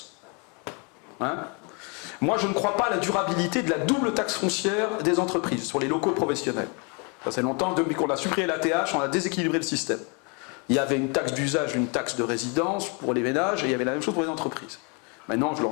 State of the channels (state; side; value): quieter; right; 33.6 dB